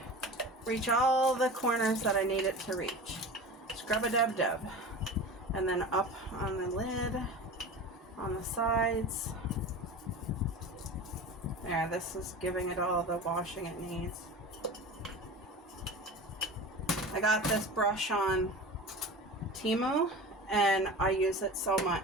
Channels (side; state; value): both; normal; correlation 0.33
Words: reach all the corners that I need it to reach. Scrub-a-dub-dub. And then up on the lid, on the sides. There, this is giving it all the washing it needs. I got this brush on Temu, and I use it so